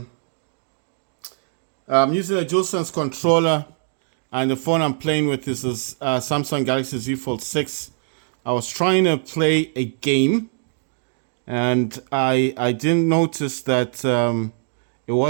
a DualSense controller, and the phone I'm playing with is a Samsung Galaxy Z Fold 6. I was trying to play a game, and I didn't notice that it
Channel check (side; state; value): left; silent; 64 dB below the other